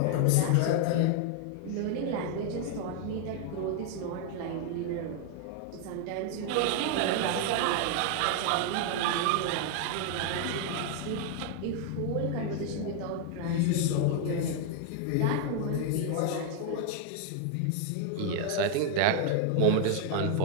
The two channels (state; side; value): different; both; correlation 0.00